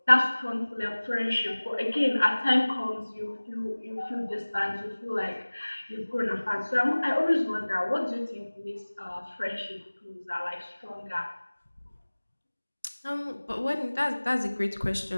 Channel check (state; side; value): inverted; both; correlation -1.00